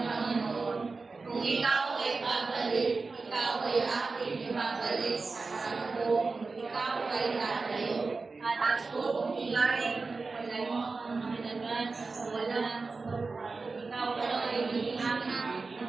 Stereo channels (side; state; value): left; quieter; 4.0 dB